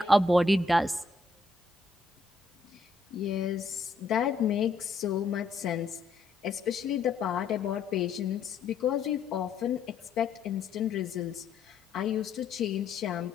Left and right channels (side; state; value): right; quieter; 3.9 dB